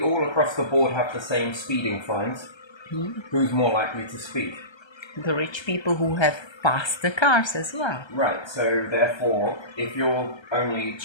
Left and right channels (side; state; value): right; late; 1.3 ms